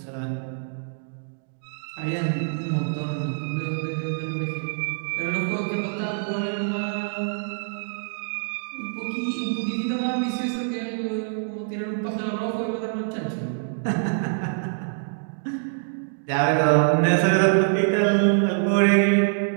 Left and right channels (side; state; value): left; silent; digital silence